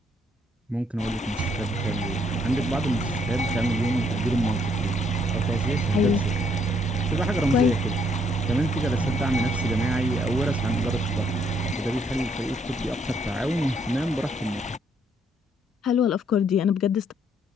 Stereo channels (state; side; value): normal; both; correlation 0.69